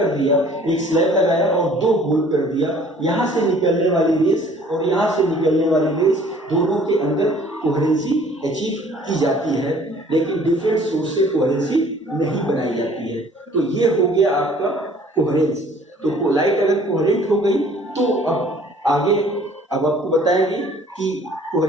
दिया, एक स्लैब लगाया और दो होल कर दिया। यहाँ से निकलने वाली रेस और यहाँ से निकलने वाली रेस, दोनों के अंदर कोहेरेंसी अचीव की जाती है, लेकिन डिफरेंट सोर्स से कोहेरेंसी नहीं बनाई जाती है। तो ये हो गया आपका कोहेरेंस। तो लाइट अगर कोहेरेंट हो गई तो अब आपको बताएंगे कि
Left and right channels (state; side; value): normal; both; correlation 0.54